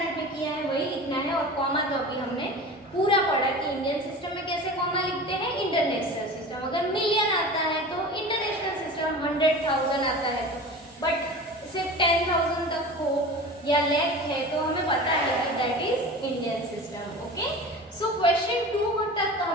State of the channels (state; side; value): normal; both; correlation 0.35